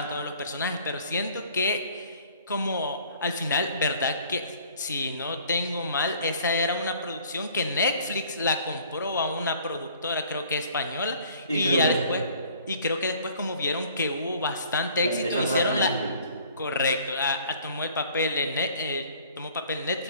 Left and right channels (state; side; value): inverted; both; correlation -0.55